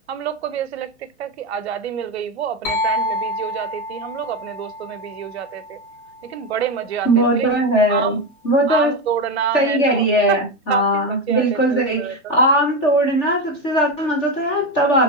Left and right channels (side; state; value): both; normal; correlation 0.14